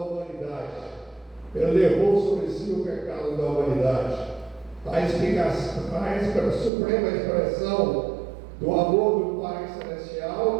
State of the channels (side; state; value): left; drops out; at 6.7 s